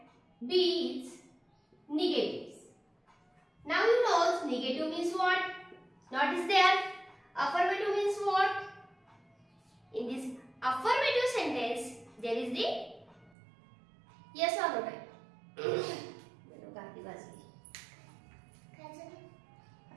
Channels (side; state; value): left; drops out; at 13.3 s